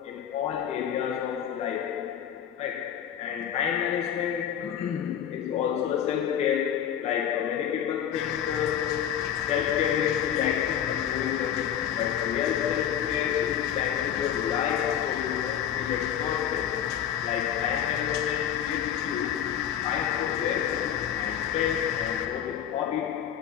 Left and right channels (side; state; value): right; quieter; 9.5 dB